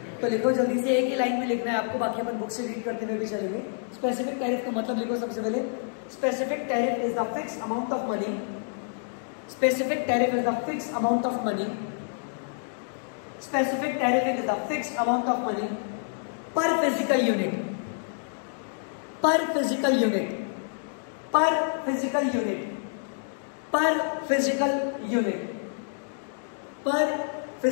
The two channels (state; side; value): silent; right; digital silence